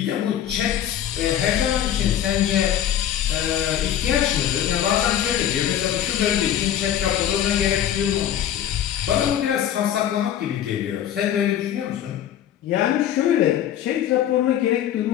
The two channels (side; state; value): right; quieter; 10.8 dB